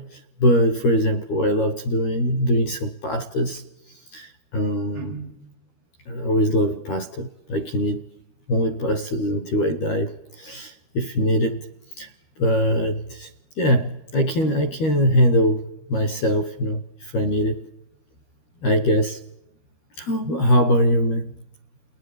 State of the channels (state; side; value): late; right; 13 ms